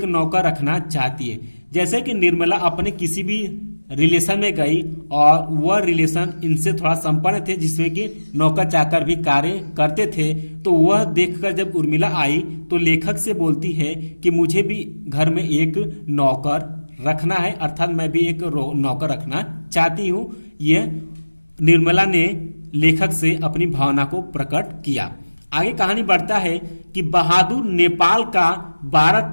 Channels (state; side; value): inverted; both; correlation -1.00